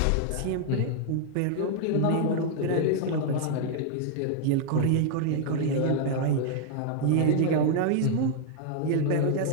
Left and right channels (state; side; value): different; both; correlation 0.00